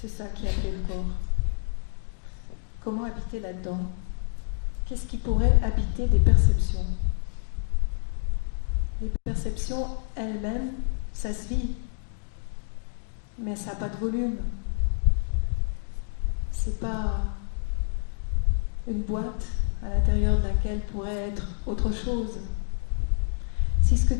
ça qui est appelé le corps. Comment habiter là-dedans? Qu'est-ce qui pourrait habiter des perceptions? Les perceptions elles-mêmes, ça se vit, mais ça n'a pas de volume. C'est pas une boîte à l'intérieur de laquelle pourrait être autre chose. Si ce que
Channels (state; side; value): silent; right; digital silence